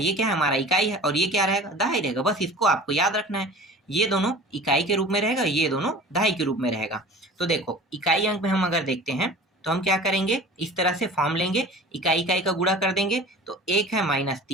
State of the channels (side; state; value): both; normal; correlation 0.40